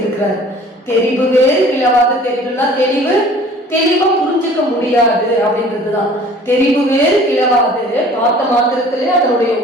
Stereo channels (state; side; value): normal; both; correlation 0.49